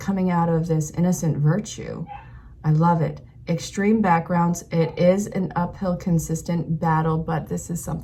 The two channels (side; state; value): both; identical; correlation 1.00